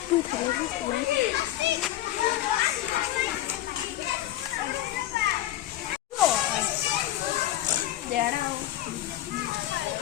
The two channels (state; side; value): quieter; right; 14.0 dB